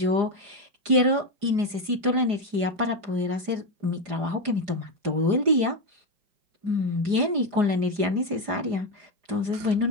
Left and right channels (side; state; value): left; late; 4.9 ms